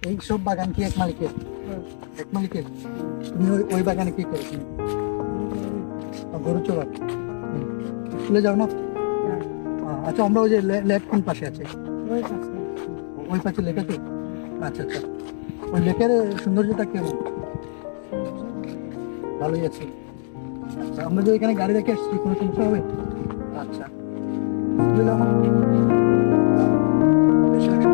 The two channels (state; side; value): silent; right; digital silence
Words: এই সব বাগান কি এক মালিকের? এক মালিকের? তুমি ওই বাগানে কি করো তুমি? গরু চড়াও? স্কুলে যাও না? আচ্ছা, আমরা ওই যে লেক কোন পাশে আছে? ওই পাশে লেক আছে? আচ্ছা আচ্ছা, ওই লেকের সৌন্দর্যটা কেমন? ভালোই আছে। আচ্ছা, আমরা যে এখানে গাড়ি রেখে আসছি, কোনো সমস্যা হবে? আচ্ছা, স্কুলে যাও না? বেশিরভাগ